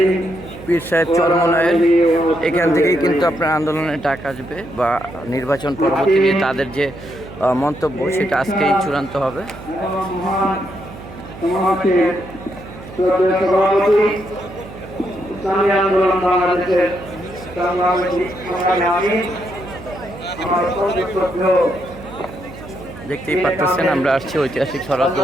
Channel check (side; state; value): right; noise; hum, 15 dB below the sound